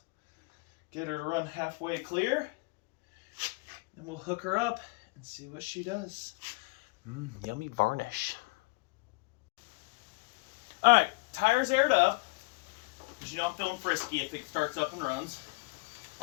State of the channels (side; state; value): right; quieter; 27.0 dB